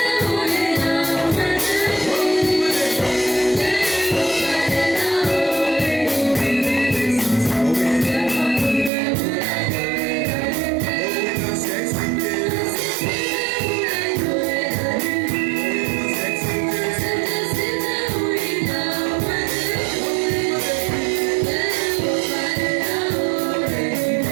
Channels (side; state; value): left; drops out; at 8.9 s